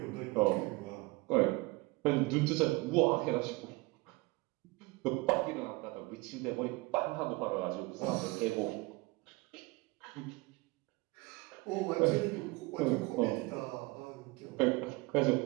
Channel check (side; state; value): left; quieter; 23.8 dB